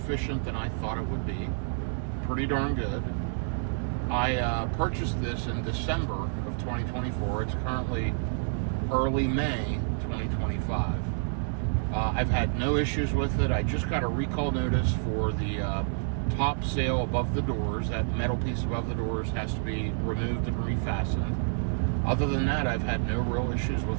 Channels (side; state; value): left; silent; digital silence